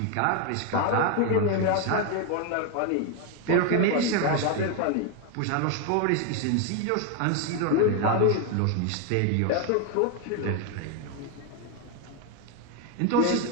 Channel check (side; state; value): both; different; correlation 0.01